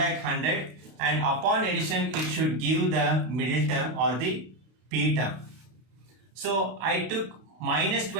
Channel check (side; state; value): left; late; 32 ms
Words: 100 and upon addition it should give the middle term or the p term. So I took minus